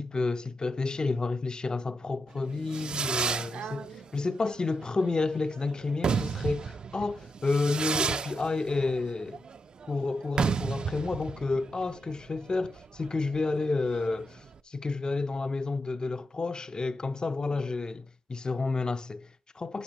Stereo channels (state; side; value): normal; both; correlation 0.86